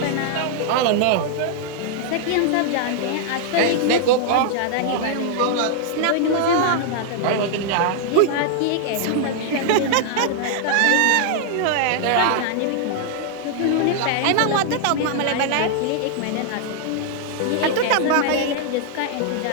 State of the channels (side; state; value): both; different; correlation -0.01